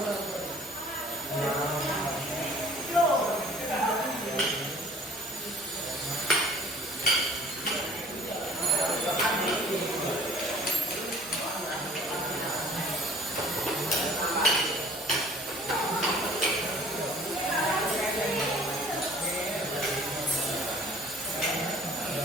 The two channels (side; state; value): both; normal; correlation 0.53